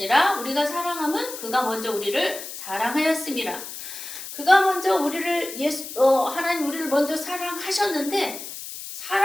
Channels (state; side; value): noise; left; hiss, 10 dB below the sound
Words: 우리가 사랑함은 그가 먼저 우리를 사랑하였습니다. 그가 먼저 우리를 하나님 우리를 먼저 사랑하셨는데